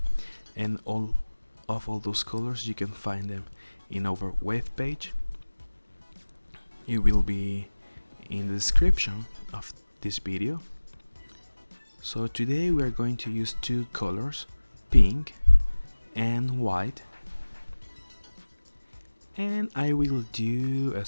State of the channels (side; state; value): both; inverted; correlation -1.00